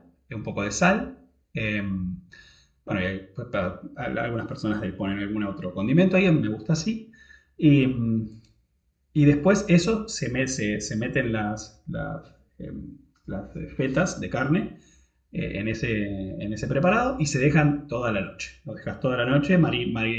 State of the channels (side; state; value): both; identical; correlation 1.00